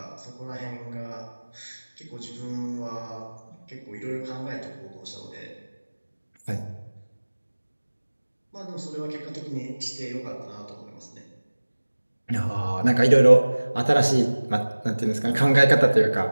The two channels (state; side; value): inverted; both; correlation -1.00